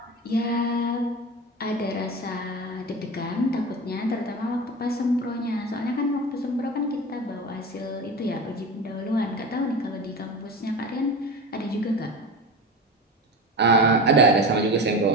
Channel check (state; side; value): normal; both; correlation 0.28